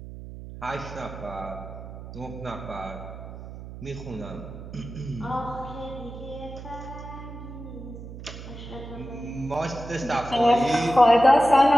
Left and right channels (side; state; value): right; noise; hum, 12 dB below the sound